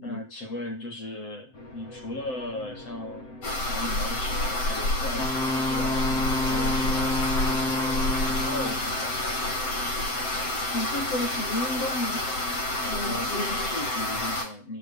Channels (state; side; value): late; right; 7.8 ms